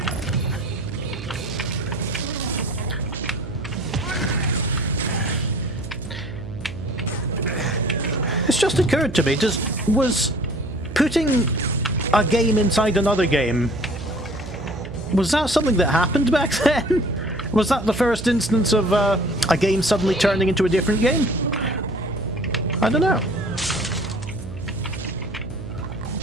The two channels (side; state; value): right; noise; hum, 11 dB below the sound